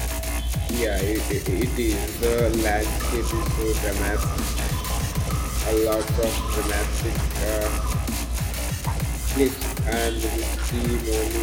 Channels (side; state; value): both; identical; correlation 1.00